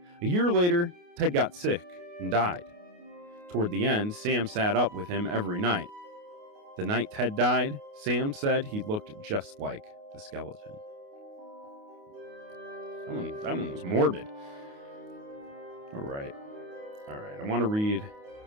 A year later, Ted got sick and died. Toward the end, Sam sat up with him every night. The night Ted died, Sam said he looked just like the skeleton. That one was morbid. All right. I want to read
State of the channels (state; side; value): late; left; 28 ms